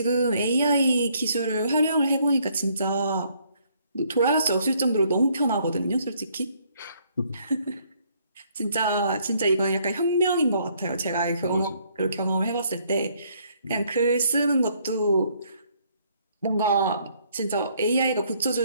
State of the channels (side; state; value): both; inverted; correlation -0.67